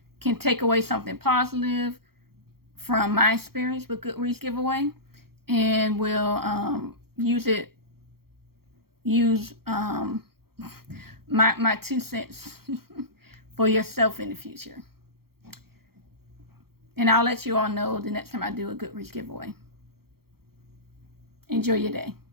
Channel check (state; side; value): late; left; 0.94 ms